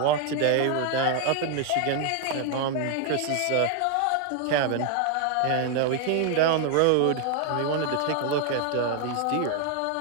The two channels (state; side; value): different; both; correlation 0.01